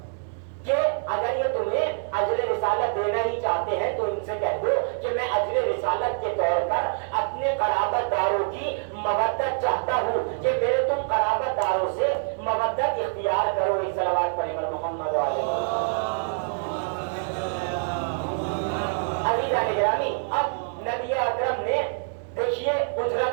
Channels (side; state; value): left; silent; digital silence